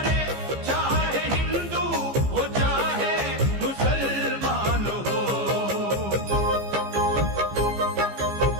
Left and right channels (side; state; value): left; late; 15 ms